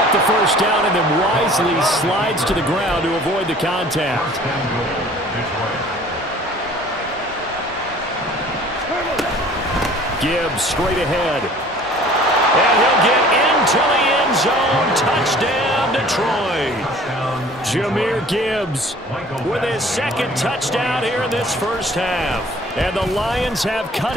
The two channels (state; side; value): normal; both; correlation 0.50